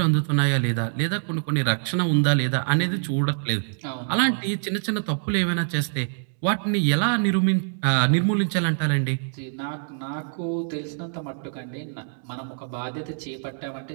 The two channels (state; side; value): silent; left; digital silence